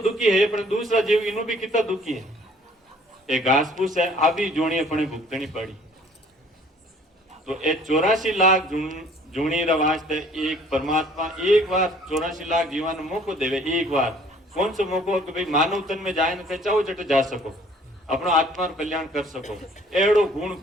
दुखी है पर दूसरा जीव इन्हों भी कितना दुखी है। एक घास फूस है आभी जोड़ी अपने भुगतनी पड़ी। तो ये 84 लाख जूनी वास्ते एक परमात्मा एक बार 84 लाख जीवन मौको देवे। एक बार कौन सा मौको कि भाई मानवतन में जाए न चाहो जट जा सको, अपना आत्मा कल्याण कर सको। एड़ो गुण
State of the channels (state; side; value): normal; both; correlation 0.56